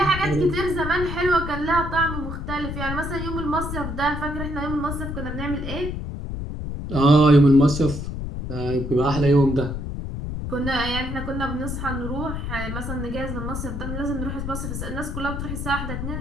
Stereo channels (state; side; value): noise; left; rumble, 5 dB below the sound